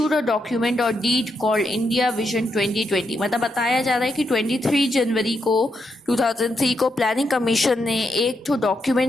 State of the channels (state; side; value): normal; both; correlation 0.81